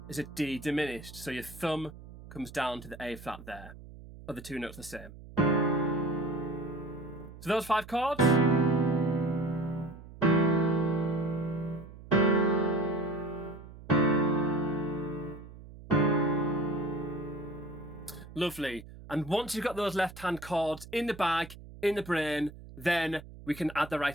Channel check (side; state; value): right; noise; hum, 16 dB below the sound